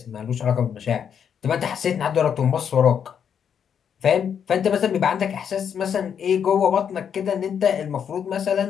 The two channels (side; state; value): right; quieter; 7.9 dB